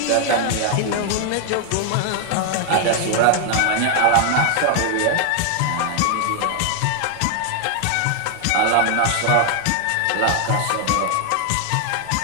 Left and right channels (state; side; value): different; both; correlation 0.00